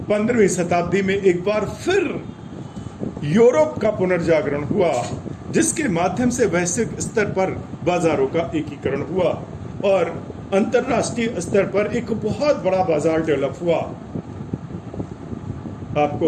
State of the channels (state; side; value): identical; both; correlation 1.00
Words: 15वीं शताब्दी में एक बार फिर यूरोप का पुनर्जागरण हुआ, जिसके माध्यम से वैश्विक स्तर पर बाजारों का एकीकरण हुआ और अंतरराष्ट्रीय स्तर पर एक बहुत बड़ा बाजार डेवलप हुआ।